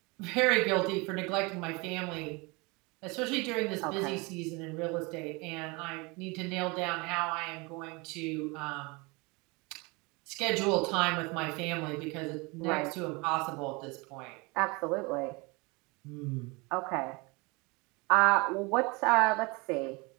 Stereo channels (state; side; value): quieter; left; 27.1 dB